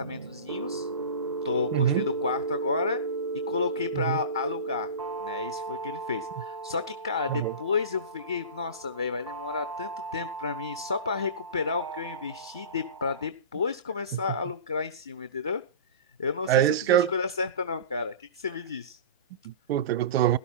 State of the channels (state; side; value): inverted; both; correlation -0.31